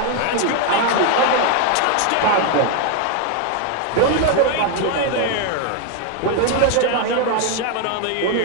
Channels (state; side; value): different; both; correlation 0.01